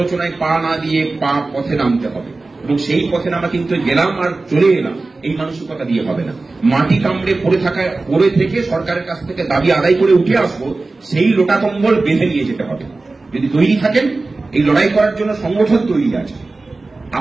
পা না দিয়ে পথে নামতে হবে, এবং সেই পথে নামা কিন্তু গেলাম আর চলে এলাম এই মানসিকতা দিয়ে হবে না। মাটি কামড়ে পড়ে থেকে সরকারের কাছ থেকে দাবি আদায় করে উঠে আসবো, সেই লোটা কম্বল বেঁধে নিয়ে যেতে হবে। যদি তৈরি থাকেন, এই লড়াই করার জন্য সংগঠন তৈরি আছে,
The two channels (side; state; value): left; quieter; 3.4 dB